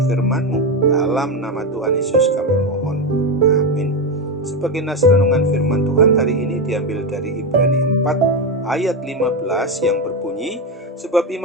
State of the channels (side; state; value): both; normal; correlation 0.11